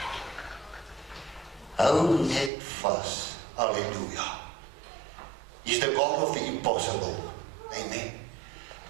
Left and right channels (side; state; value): left; drops out; at 2.5 s